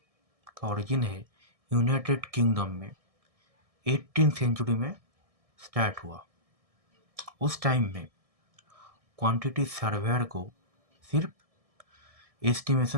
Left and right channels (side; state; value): left; late; 1.6 ms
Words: का ओरिजिन है यूनाइटेड किंगडम में 18th सेंचुरी में स्टार्ट हुआ। उस टाइम में क्वांटिटी सर्वेयर को सिर्फ